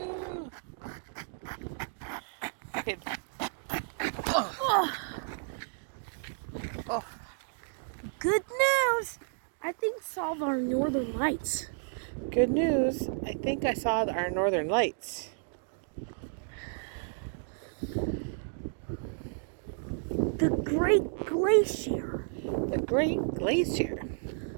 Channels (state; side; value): silent; left; digital silence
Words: Okay. Oh. Good news! I think saw our northern lights. Good news. I think I saw our northern lights. The Great Glacier. The Great Glacier.